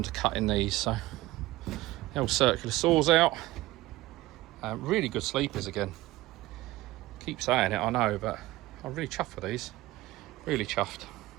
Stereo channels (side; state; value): left; quieter; 17.8 dB